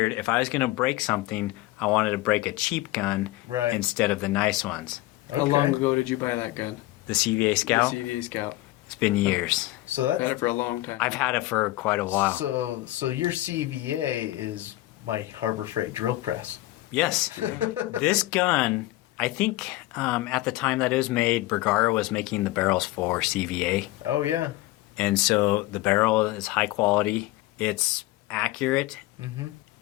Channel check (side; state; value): right; quieter; 17.9 dB